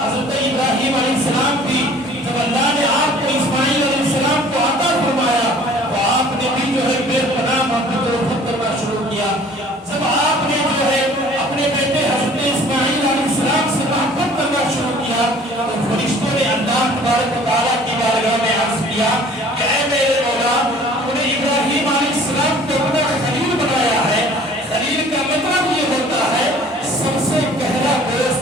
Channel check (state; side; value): normal; both; correlation 0.51